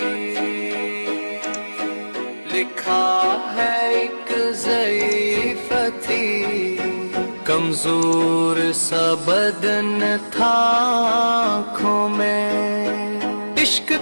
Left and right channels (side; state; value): both; inverted; correlation -1.00